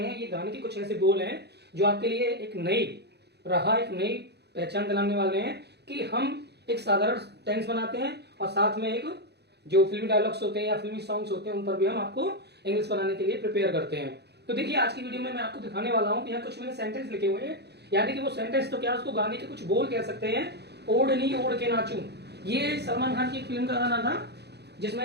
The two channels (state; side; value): late; left; 0.48 ms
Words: ये गाने के कुछ ऐसे बोल हैं जो आपके लिए एक नई पहचान दिलाने वाले हैं कि हम एक साधारण टेंस बनाते हैं और साथ में एक जो फिल्मी डायलॉग्स होते हैं या फिल्मी सॉन्ग्स होते हैं उन पर भी हम आपको इंग्लिश बनाने के लिए प्रिपेयर करते हैं। तो देखिए, आज की वीडियो में मैं आपको दिखाने वाला हूँ कि यहाँ कुछ मैंने सेंटेंस लिखे हुए हैं, यानी कि वो सेंटेंस तो क्या, उसको गाने के कुछ बोल कह सकते हैं। ओढ़नी ओढ़ के नाचूं, ये सलमान खान की एक फिल्म का गाना था